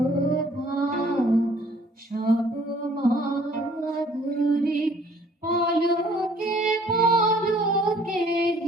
সব মাধুরী পলকে পলকে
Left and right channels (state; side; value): normal; both; correlation 0.58